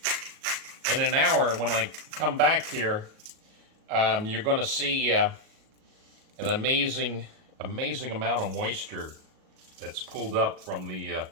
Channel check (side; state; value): left; late; 37 ms